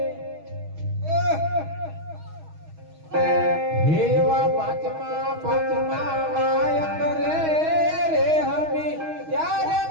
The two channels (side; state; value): left; late; 6.3 ms